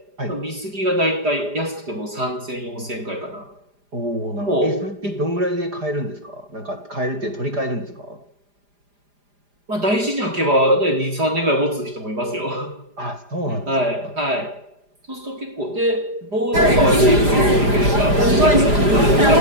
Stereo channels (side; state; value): left; late; 4.9 ms